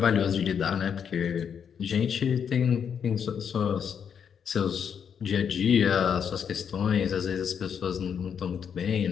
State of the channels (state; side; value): quieter; right; 7.6 dB